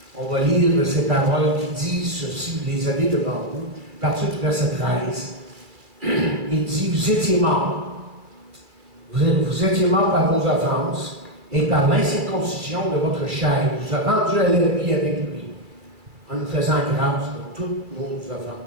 on va lire ces paroles qui disent ceci, vous les avez devant vous, à partir du verset 13. Il dit, vous étiez morts. Vous étiez morts par vos offenses et par l'incirconcision de votre chair. Il vous a rendu à la vie avec lui, en nous faisant grâce de toutes nos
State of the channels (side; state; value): left; late; 2.4 ms